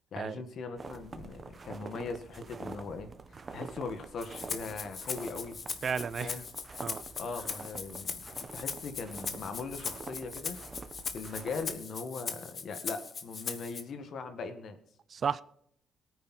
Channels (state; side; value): normal; both; correlation 0.75